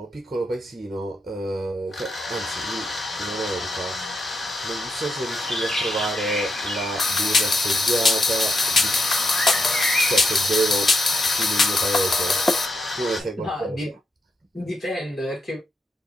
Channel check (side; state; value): both; normal; correlation 0.82